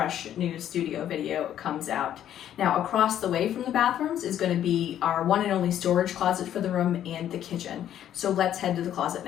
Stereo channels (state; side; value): quieter; right; 10.9 dB